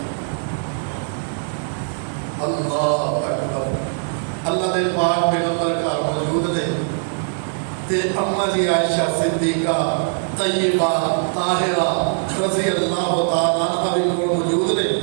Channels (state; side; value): silent; left; digital silence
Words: اللہ اکبر اللہ دے پاک پیغمبر کا موجود نے تے اما جی عائشہ صدیقہ طیبہ طاہرہ رضی اللہ تعالیٰ عنہ بھی موجود نے